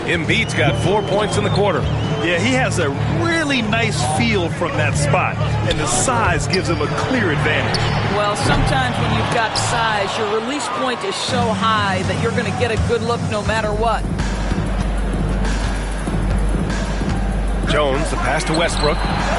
Embiid's got 4 points in the quarter. Yeah, he has a really nice feel from that spot, and the size gives him a clear advantage. Well, sometimes when you've got size, your release point is so high that you're going to get a good look no matter what. Jones, the pass to Westbrook.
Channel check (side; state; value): both; identical; correlation 1.00